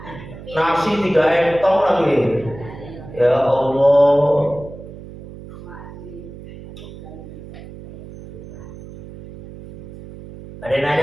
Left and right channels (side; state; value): right; noise; hum, 15 dB below the sound